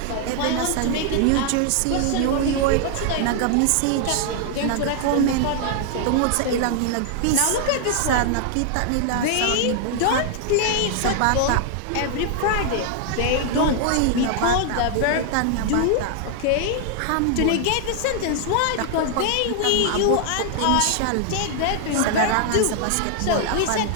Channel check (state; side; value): different; both; correlation 0.00